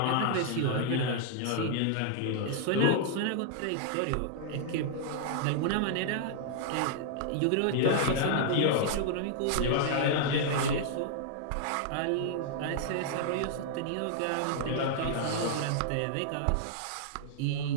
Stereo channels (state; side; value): different; both; correlation -0.01